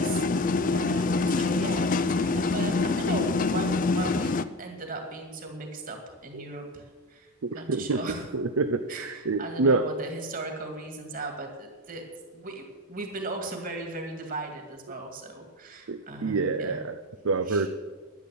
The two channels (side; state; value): both; normal; correlation 0.21